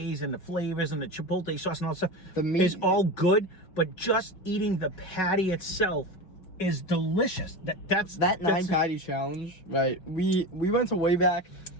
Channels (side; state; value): right; late; 6.0 ms